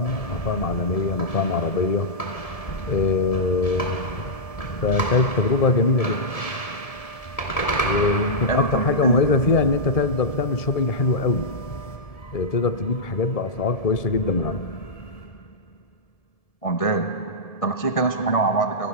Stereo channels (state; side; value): late; right; 1.7 ms